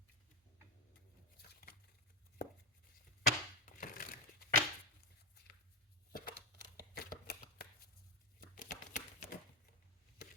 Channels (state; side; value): normal; both; correlation 0.08